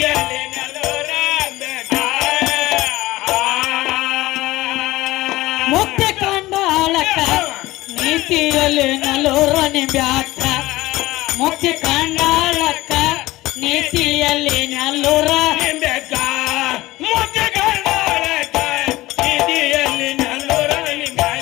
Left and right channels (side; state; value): right; quieter; 18.3 dB